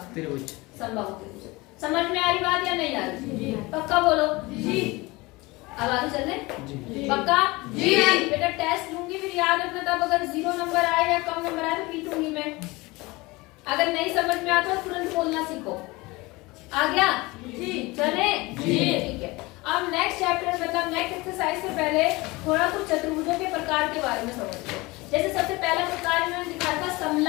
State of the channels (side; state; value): right; quieter; 22.7 dB